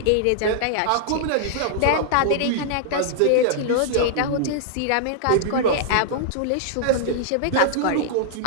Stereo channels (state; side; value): different; both; correlation -0.01